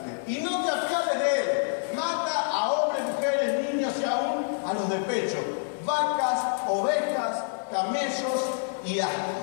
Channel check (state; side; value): silent; right; 60 dB below the other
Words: Y no te apiades de él. Mata a hombres, mujeres, niños y aún a los de pecho, vacas, ovejas, camellos y